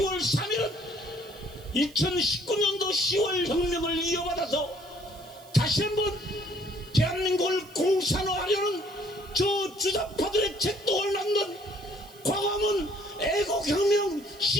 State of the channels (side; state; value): right; noise; hiss, 23 dB below the sound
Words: 3일은 2019년도 10월 혁명을 이어받아서 다시 한번 대한민국을 공산화하려는 저 주사파들의 책동을 낳는 광화문 애국혁명